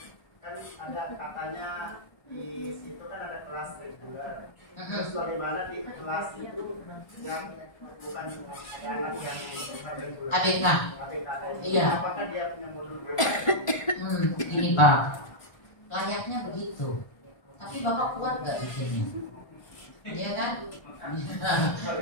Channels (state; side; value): late; right; 1.3 ms